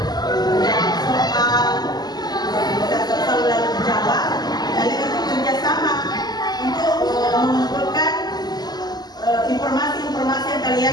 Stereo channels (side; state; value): right; late; 0.20 ms